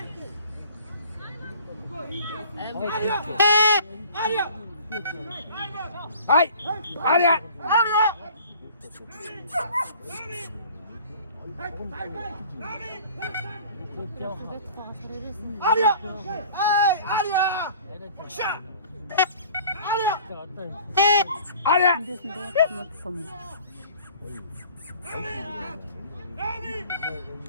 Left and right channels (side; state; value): both; inverted; correlation -0.48